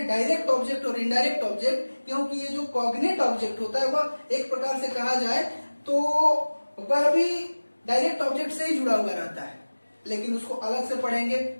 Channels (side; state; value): both; inverted; correlation -1.00